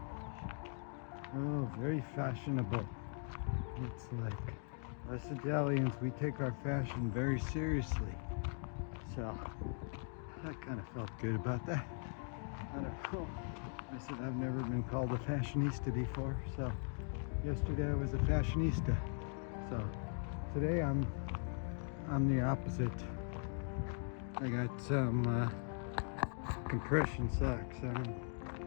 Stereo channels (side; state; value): right; silent; 51 dB below the other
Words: "Oh, very fashionable." It's like, us Italians, we take our fashion very seriously. So, I kind of felt good about that. I don't know. I said I've never been called a fashionista before, so yesterday I was a fashionista. So today I'm the opposite. I got some compression socks on,